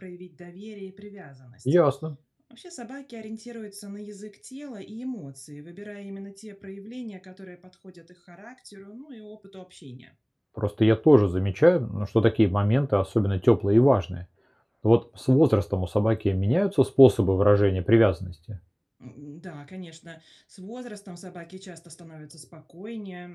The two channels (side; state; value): both; identical; correlation 1.00